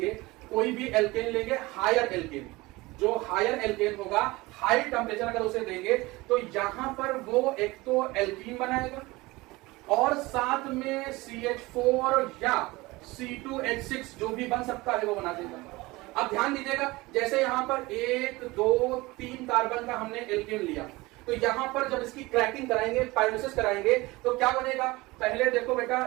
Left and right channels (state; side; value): quieter; left; 21.5 dB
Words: कोई भी एल्केन लेंगे, हायर एल्केन, जो हायर एल्केन होगा, हाई टेम्परेचर अगर उसे देंगे तो यहां पर वो एक तो एल्कीन बनाएगा और साथ में CH4 या C2H6 जो भी बन सकता है वो बना देगा। अब ध्यान दीजिएगा, जैसे यहां पर 1 2 3 कार्बन का हमने एल्केन लिया, तो यहां पर जब इसकी क्रैकिंग कराएंगे, पायरोलिसिस कराएंगे, तो क्या बनेगा, पहले देखो